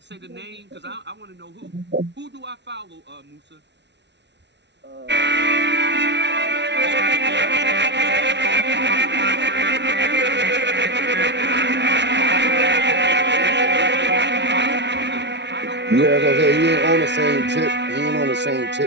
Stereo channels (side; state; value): left; late; 0.51 ms